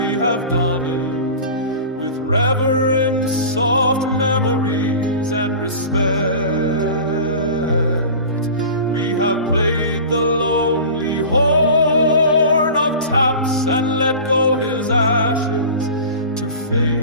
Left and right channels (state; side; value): inverted; both; correlation -0.36